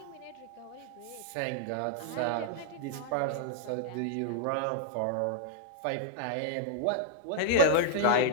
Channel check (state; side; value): different; both; correlation -0.01